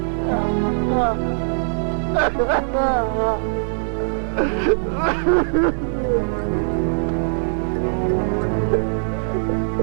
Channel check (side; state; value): left; silent; digital silence